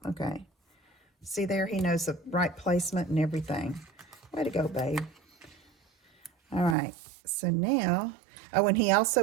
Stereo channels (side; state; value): left; drops out; at 6.8 s